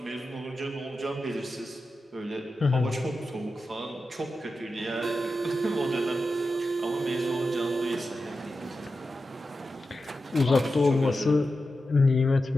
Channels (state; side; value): normal; both; correlation 0.91